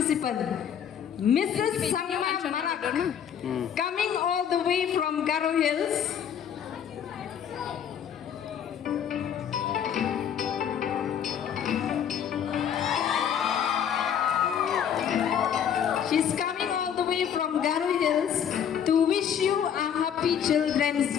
Mrs. Sangma Marak, coming all the way from Garo Hills. She's coming all the way from Garo Hills to wish you a happy Children's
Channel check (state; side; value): quieter; right; 8.6 dB